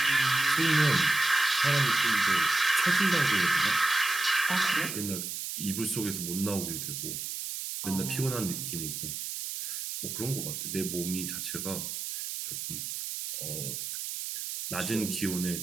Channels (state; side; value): noise; right; hiss, 5 dB below the sound